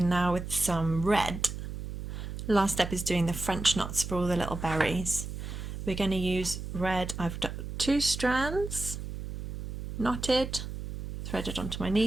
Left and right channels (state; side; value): noise; right; hum, 7 dB below the sound